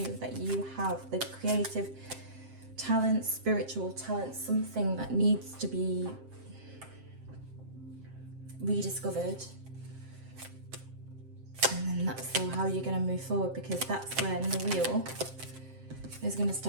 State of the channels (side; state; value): left; late; 7.6 ms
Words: that you have the creative talent, spiritual talent, something that needs to be rediscovered. And then that's how you're going to move forward, because that's when the wheel is going to